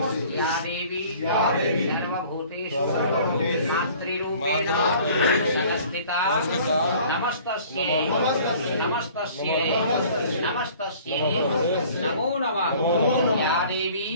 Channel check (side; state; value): both; inverted; correlation -0.50